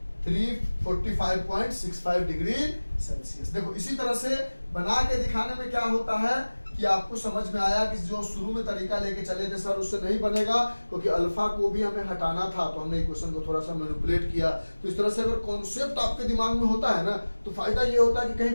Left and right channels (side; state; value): both; inverted; correlation -1.00